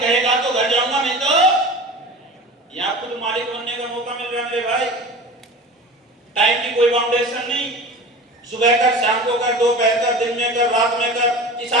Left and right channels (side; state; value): both; normal; correlation 0.35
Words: तो घर जाऊंगा, नहीं तो यहाँ खुद मालिक बनने का मौका मिल रहा है भाई। टाइम की कोई बाउंडेशन नहीं, सुबह कर, शाम को कर, दोपहर कर, दिन में कर, रात में कर।